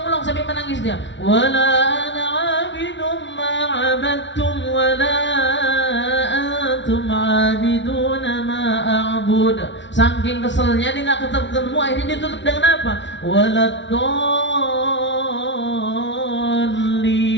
sampai menangis dia. Wala ana abidum ma abadtum wala antum abiduna ma a'bud. Saking keselnya dia nggak ketemu, akhirnya dia tutup dengan apa? Waladdallin.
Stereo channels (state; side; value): late; right; 0.53 ms